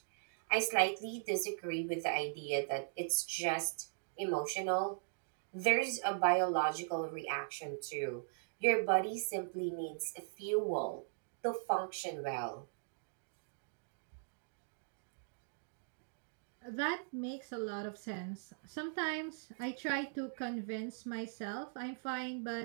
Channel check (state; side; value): silent; left; digital silence